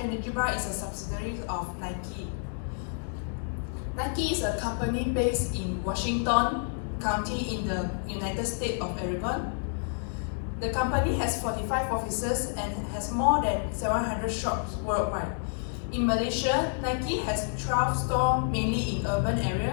Energy Bar is a subsidiary of Nike. Nike is a company based in Washington County in the United States of Oregon. The company has 45 offices and has more than 700 shops worldwide. In Malaysia, Nike has 12 stores mainly in urban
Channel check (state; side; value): silent; right; 58 dB below the other